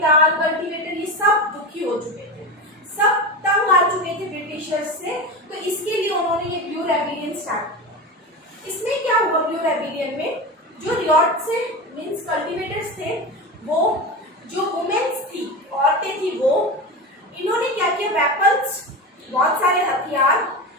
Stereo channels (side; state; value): both; normal; correlation 0.23